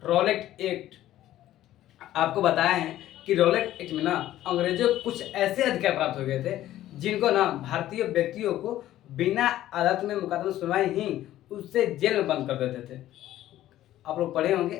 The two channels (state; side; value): quieter; right; 13.6 dB